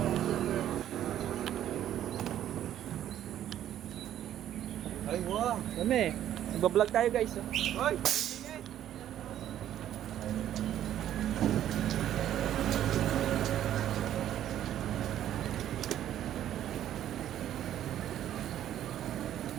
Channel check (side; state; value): left; quieter; 11.5 dB